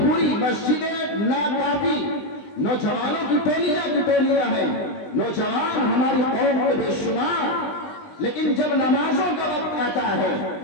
मस्जिदें नाकाफी, नौजवानों की टोलियां हैं, नौजवान हमारी कौम के बेशुमार। लेकिन जब नमाजों का वक्त आता है,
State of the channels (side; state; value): right; late; 20 ms